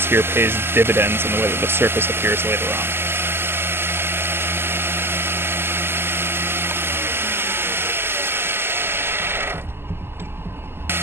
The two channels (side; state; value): left; late; 0.11 ms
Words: here pays dividends in the way that the surface appears later on.